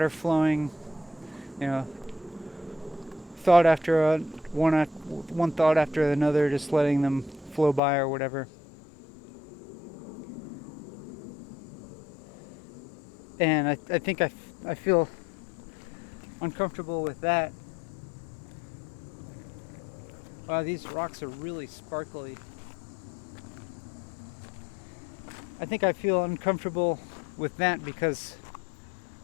flowing, you know, thought after one thought after another, just letting them flow by or whatever. And I think I feel uncomfortable with that. Wow, these rocks are really sparkly. I think I feel uncomfortable with that because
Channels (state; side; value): drops out; right; at 7.8 s